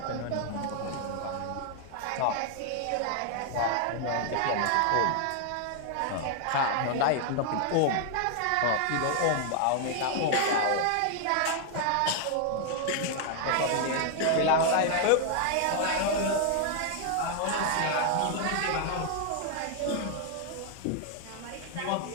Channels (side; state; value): both; different; correlation 0.00